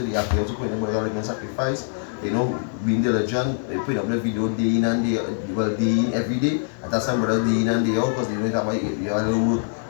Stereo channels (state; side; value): silent; right; digital silence